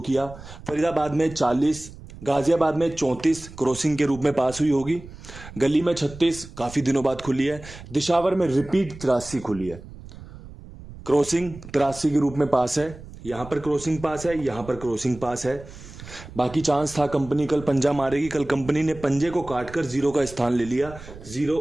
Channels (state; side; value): noise; right; rumble, 16 dB below the sound